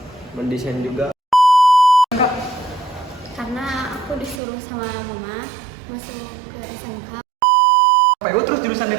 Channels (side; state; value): left; drops out; at 4.4 s